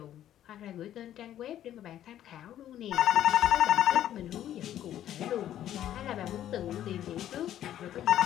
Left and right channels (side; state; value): right; quieter; 11.7 dB